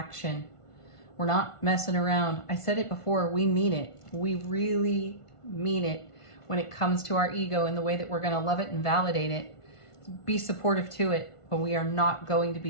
We're not messing around. I said it before, we mean it. We really mean it when it comes to our ego and the way that we're going to love it and validate it. Be supportive to it, but we are not going to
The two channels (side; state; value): right; late; 1.5 ms